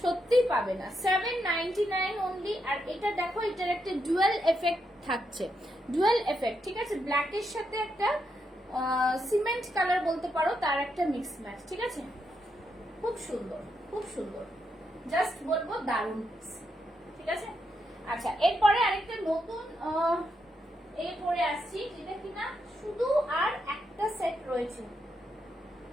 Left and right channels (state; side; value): normal; both; correlation 0.81